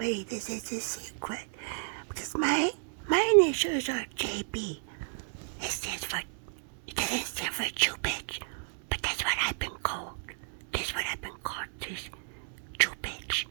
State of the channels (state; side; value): silent; left; digital silence